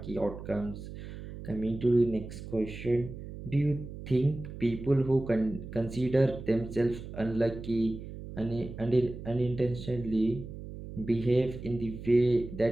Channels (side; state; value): right; noise; hum, 11 dB below the sound